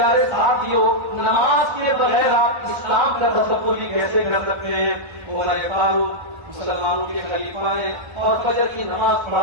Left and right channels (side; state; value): left; late; 1.3 ms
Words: ساتھیوں، نماز کے بغیر آپ اسلام کا تصور بھی کیسے کر سکتے ہیں؟ عمر فاروق مسلمانوں کے خلیفہ ہیں اور فجر کی نماز